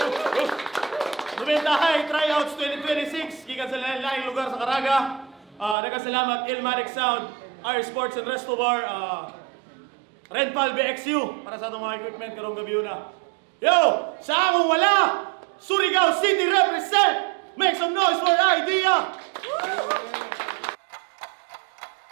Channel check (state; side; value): drops out; left; at 5.8 s